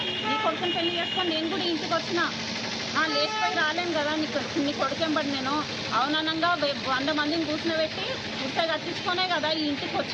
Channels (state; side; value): identical; both; correlation 1.00